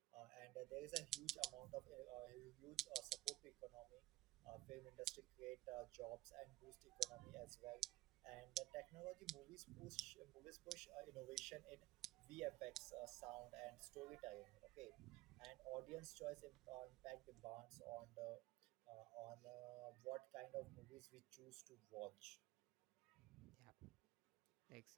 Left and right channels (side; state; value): left; quieter; 16.8 dB